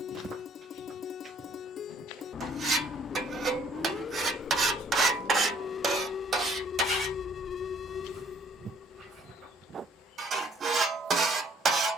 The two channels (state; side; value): normal; both; correlation 0.60